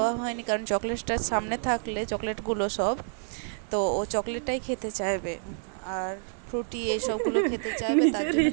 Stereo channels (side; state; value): left; silent; digital silence